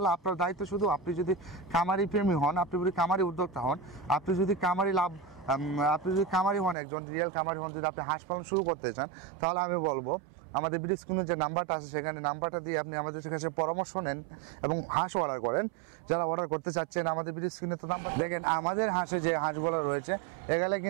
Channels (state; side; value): drops out; left; at 6.8 s